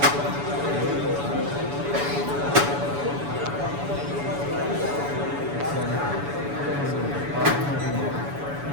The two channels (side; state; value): left; late; 7.0 ms